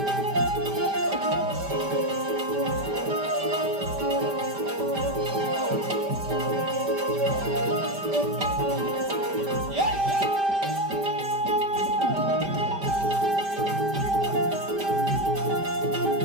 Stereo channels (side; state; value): left; late; 5.1 ms